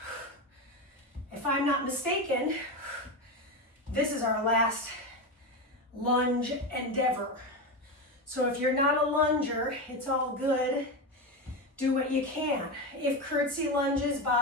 If I'm not mistaken, this is our last lunge endeavor. So if you're not a lunger, it's all good. Do what you can. If curtsy lunges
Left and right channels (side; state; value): both; normal; correlation 0.16